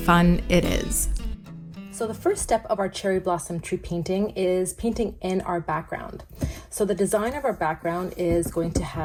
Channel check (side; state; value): both; identical; correlation 1.00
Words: it is. So the first step of our cherry blossom tree painting is painting in our background. So the design of our background is going